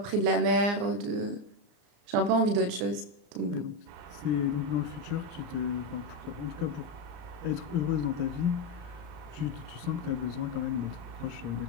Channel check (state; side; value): late; left; 34 ms